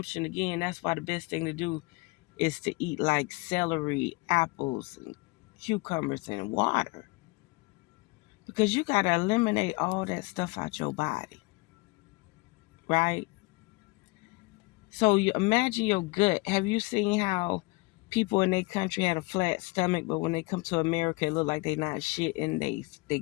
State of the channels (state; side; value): quieter; right; 26.0 dB